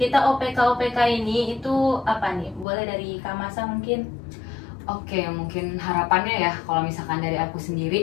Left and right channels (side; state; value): right; drops out; at 2.7 s